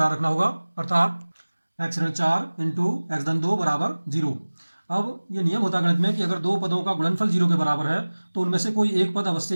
रखना होगा, अर्थात x ऋण 4 इंटू एक्स धन 2 बराबर 0। अब ये नियम होता है गणित में कि अगर दो पदों का गुणनफल 0 के बराबर है तो उनमें से कोई एक पद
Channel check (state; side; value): inverted; both; correlation -1.00